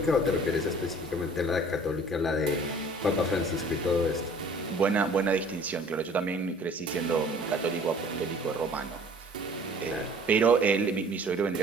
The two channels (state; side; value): normal; both; correlation 0.51